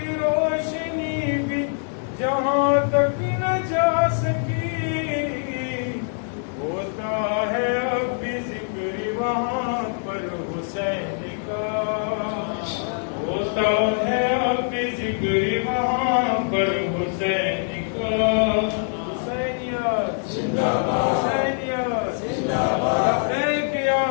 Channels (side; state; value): right; silent; 62 dB below the other